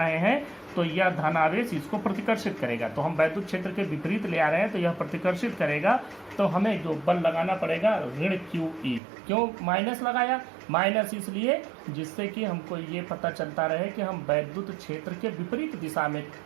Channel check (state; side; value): drops out; left; at 9.0 s